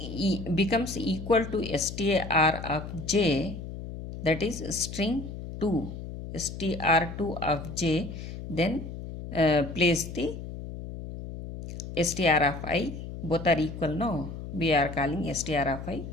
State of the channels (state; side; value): noise; left; hum, 9 dB below the sound